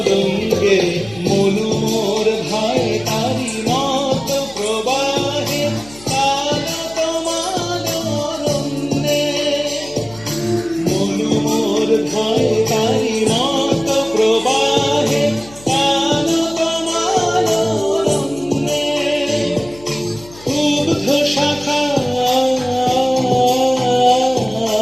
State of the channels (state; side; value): noise; left; hum, 21 dB below the sound